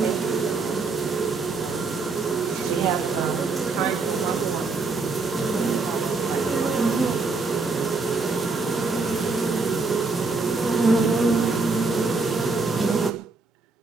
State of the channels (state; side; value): quieter; left; 4.0 dB